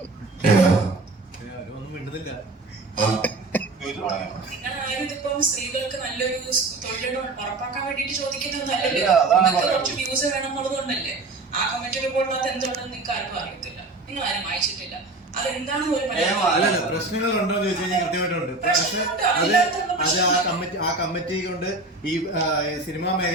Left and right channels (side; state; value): left; quieter; 3.2 dB